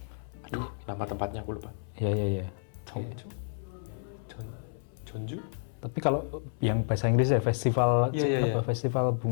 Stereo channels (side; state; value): right; silent; 57 dB below the other